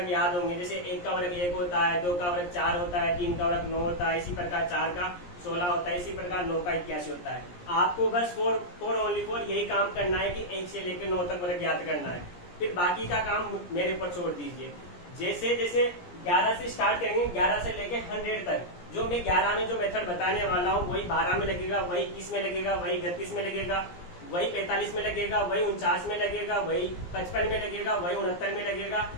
याद होंगे। जैसे 1 का वर्ग 1 होता है, 2 का वर्ग 4 होता है, 3 का वर्ग 9 होता है, इसी प्रकार 4 का 16 होता है, इसी प्रकार 9 का 81 होता है। आपको बस फोर ओनली फोर यही काम करना है कि 1 से लेकर 9 तक वर्ग याद करना है। फिर बाकी का काम मेरे ऊपर छोड़ दीजिए। जैसे जैसे 11 से स्टार्ट करेंगे, 11 से लेकर 100 तक जो मैं 11 में जो मेथड बताने वाला हूँ वही 12 में लगेगा, वही 21 में लगेगा, वही 31 में लगेगा, वही 45 में लगेगा, वही 49 में लगेगा, वही 55 में लगेगा, वही 69 में लगेगा।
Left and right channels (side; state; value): right; late; 17 ms